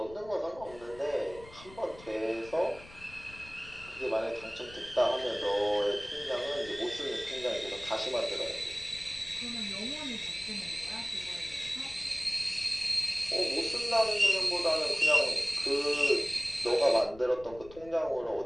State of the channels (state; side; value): noise; left; rumble, 19 dB below the sound